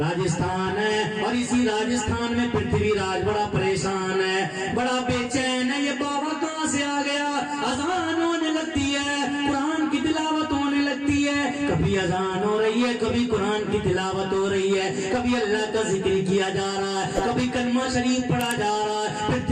ہے, اور اسی راجستھان میں پرتھوی راج بڑا پریشان ہے, بڑا بے چین ہے. یہ بابا کہاں سے آ گیا؟ اذان ہونے لگتی ہے, قرآن کی تلاوت ہونے لگتی ہے, کبھی اذان ہو رہی ہے, کبھی قرآن کی تلاوت ہو رہی ہے, کبھی اللہ کا ذکر کیا جا رہا ہے, کبھی کلمہ شریف پڑھا جا رہا ہے.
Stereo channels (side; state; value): both; identical; correlation 1.00